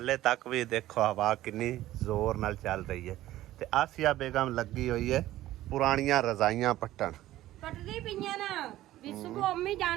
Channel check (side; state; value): left; quieter; 14.9 dB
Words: तक भी देखो हवा कितनी जोर नाल चल रही है। ते आसिया बेगम लगी हुई है पुरानियां रजाइयां पट्टन कटदी पईयां ना भी सुबह अम्मी